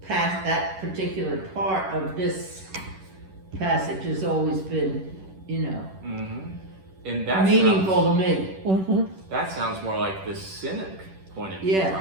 particular part of this passage has always been, Mm-hmm. And that meaningful to me. Mm-hmm. That sounds more like the cynic point of view, Yeah.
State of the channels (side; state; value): left; late; 11 ms